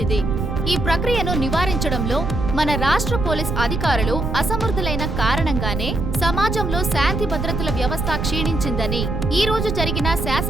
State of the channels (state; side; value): noise; right; rumble, 2 dB below the sound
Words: ఇది. ఈ ప్రక్రియను నివారించడంలో మన రాష్ట్ర పోలీస్ అధికారులు అసమర్థులైన కారణంగానే సమాజంలో శాంతి భద్రతల వ్యవస్థ క్షీణించిందని ఈ రోజు జరిగిన